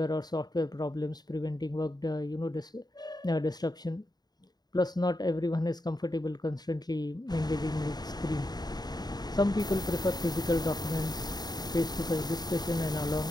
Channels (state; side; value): late; right; 0.20 ms